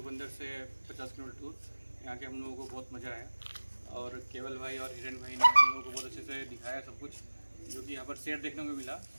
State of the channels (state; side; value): inverted; both; correlation -1.00